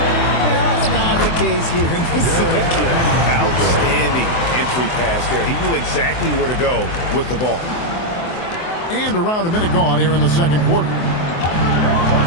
That's not the case here in the second. Outstanding entry pass there. He knew exactly where to go with the ball. And around a minute gone here in the second quarter.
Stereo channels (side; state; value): right; late; 24 ms